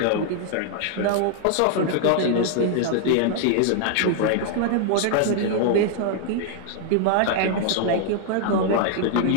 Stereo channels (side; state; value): both; different; correlation 0.00